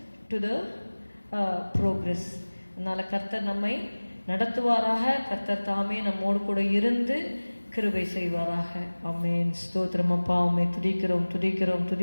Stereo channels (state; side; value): inverted; both; correlation -1.00